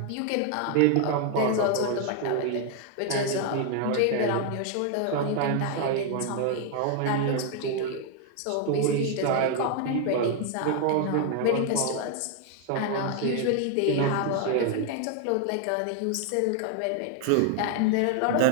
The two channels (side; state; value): both; different; correlation 0.00